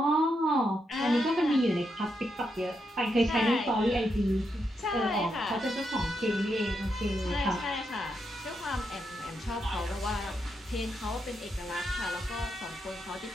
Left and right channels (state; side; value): normal; both; correlation 0.82